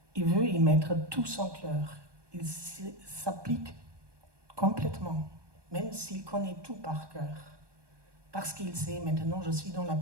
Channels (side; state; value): left; late; 1.2 ms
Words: il veut y mettre tout son cœur. Il s'applique complètement, même s'il connaît tout par cœur. Parce qu'il sait, maintenant je suis dans la...